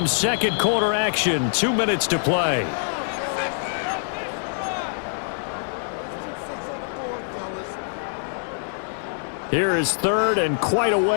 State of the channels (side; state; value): right; silent; digital silence